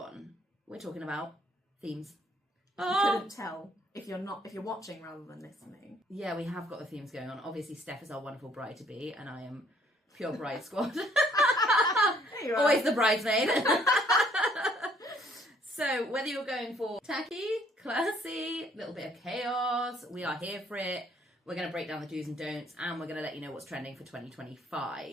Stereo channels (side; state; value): both; normal; correlation 0.63